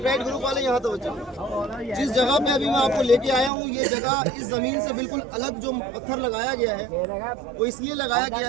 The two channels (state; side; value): drops out; left; at 3.5 s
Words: ग्रुप वाले यहाँ तवज्जो कीजिए। जिस जगह पे अभी मैं आपको लेके आया हूँ, ये जगह इस ज़मीन से बिल्कुल अलग जो पत्थर लगाया गया है वो इसलिए लगाया गया